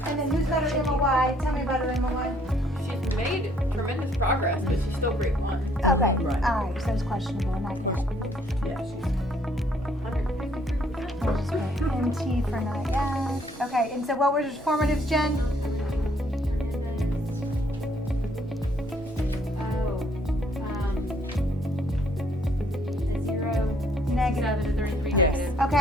And then who's got her MOY? Tell me about her MOY. She's made tremendous progress, but she's still grade 1. Okay, Right. all right, so it's questionable, not yet. Yeah, We'll just put NT for not yet. Okay, and so what were your formatives, Jen? A 0, Negative. 7 to 33 negative.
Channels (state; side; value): normal; both; correlation 0.65